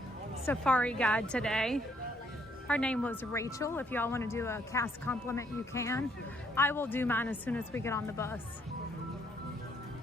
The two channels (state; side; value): normal; both; correlation 0.69